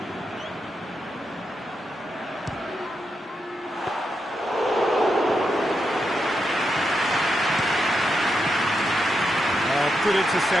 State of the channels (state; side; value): normal; both; correlation 0.85